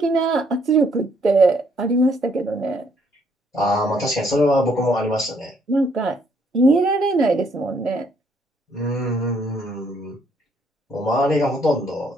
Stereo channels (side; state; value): both; normal; correlation 0.68